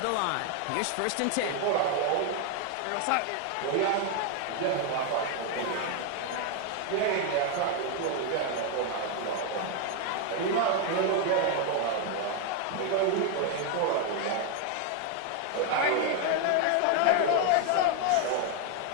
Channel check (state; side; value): different; both; correlation 0.01